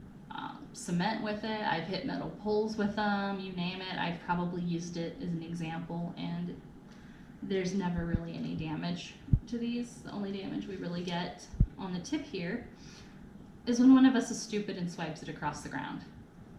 cement with it, I've hit metal poles with them, you name it. I've probably used it as an example, and there's never really any damage to these. The only damage we really get on the tip here is when one of us is stupid and swipes it across the ground.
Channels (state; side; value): identical; both; correlation 1.00